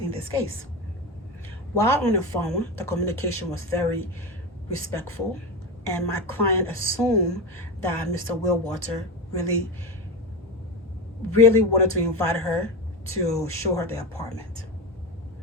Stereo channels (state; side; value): normal; both; correlation 0.19